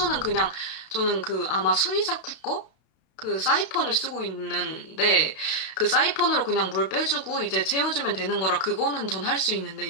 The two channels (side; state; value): right; late; 32 ms